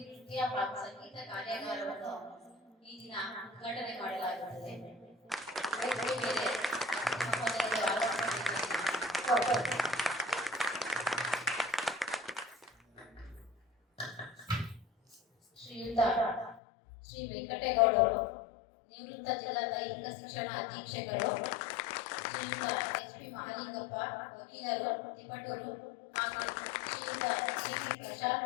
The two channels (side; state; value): right; drops out; at 16.6 s